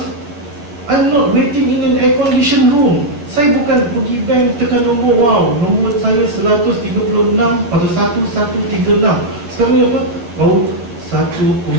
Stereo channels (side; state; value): left; late; 11 ms